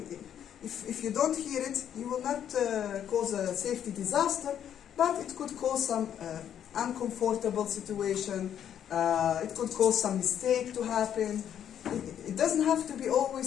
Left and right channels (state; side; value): quieter; right; 9.6 dB